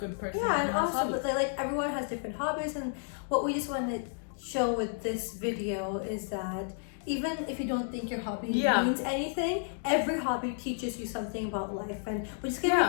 good person. Yeah, and also, but like everyone has different hobbies, and what we just want to show with this video is that even if you don't think your hobby means anything, every hobby teaches you something about life, and we're just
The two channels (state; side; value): silent; right; digital silence